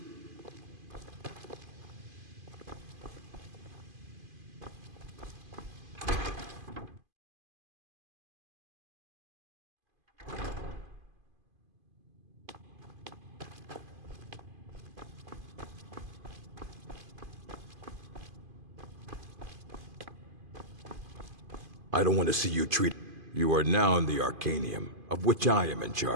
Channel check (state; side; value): late; left; 2.5 ms